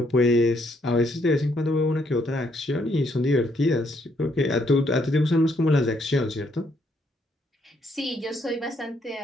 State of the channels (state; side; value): normal; both; correlation 0.72